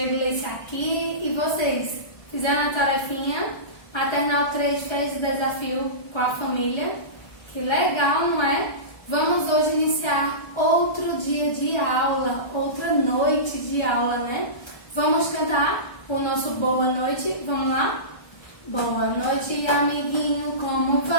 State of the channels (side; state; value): right; late; 1.3 ms